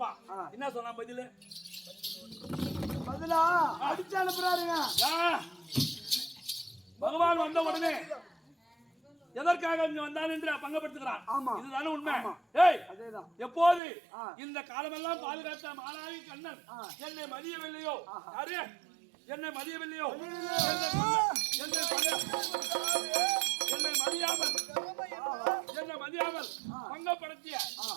என்ன சொன்னா பதிலா அடிச்சு அனுப்புறாருங்க. பகவான் வந்த உடனே எதற்காக இங்க வந்தான் என்று பங்கப்படுத்துகிறான். இதுதானே உண்மை. எப்போது இந்த காலமெல்லாம் பாதுகாத்த மாலாயி கண்ணன் என்னை மதியவில்லையோ என்னை மதியவில்லையோ என்னை மதியாமல் பங்கப்படுத்திய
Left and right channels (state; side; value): drops out; left; at 13.8 s